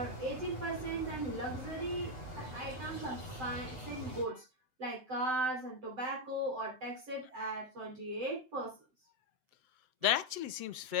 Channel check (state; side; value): late; left; 7.8 ms